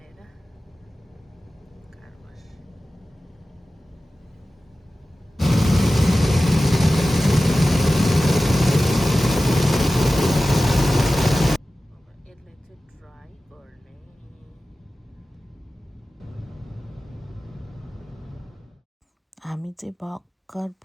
कार वास। यसलाई चाहिँ ड्राई गर्ने। हामी चाहिँ भर्खर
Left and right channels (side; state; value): both; normal; correlation 0.95